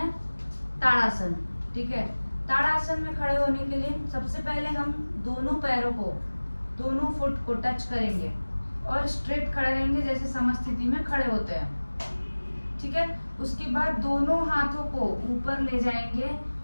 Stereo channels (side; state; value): both; inverted; correlation -1.00